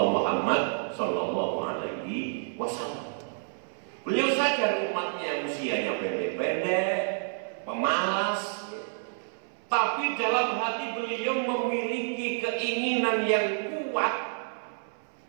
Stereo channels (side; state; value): left; silent; 59 dB below the other